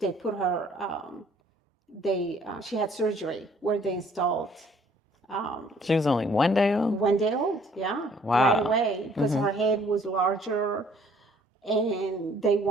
they put her. She had surgery where they installed. She was only 1 day old? 1 day old, yeah. Wow. Right away, because her head was larger, and they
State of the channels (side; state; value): both; normal; correlation 0.60